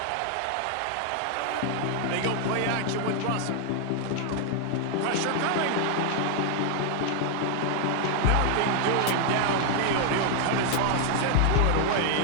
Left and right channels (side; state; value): both; different; correlation 0.00